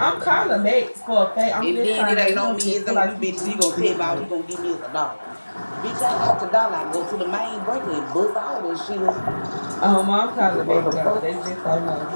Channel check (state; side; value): inverted; both; correlation -1.00